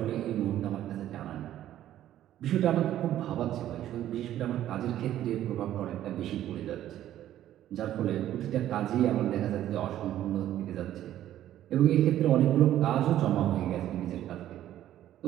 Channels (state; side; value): quieter; left; 12.4 dB